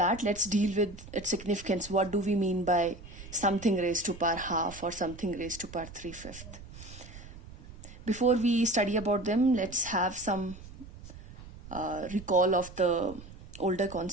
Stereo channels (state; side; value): noise; right; rumble, 16 dB below the sound